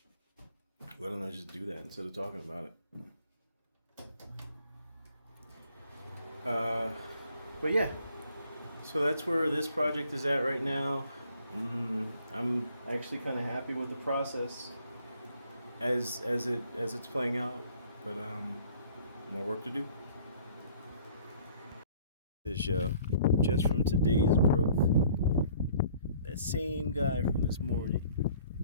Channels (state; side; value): inverted; both; correlation -0.57